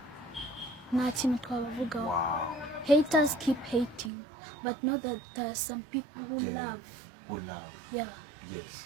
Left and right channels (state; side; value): drops out; left; at 4.1 s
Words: nta kintu twabavugaho. Wow. Haters keep hating, but know that there are some people who love. Who love. Yeah. Yes.